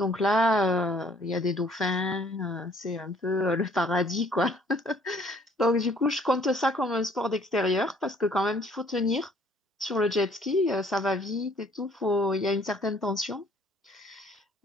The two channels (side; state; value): both; normal; correlation 0.60